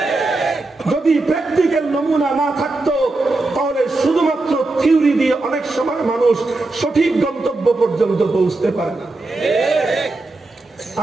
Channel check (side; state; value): left; quieter; 3.1 dB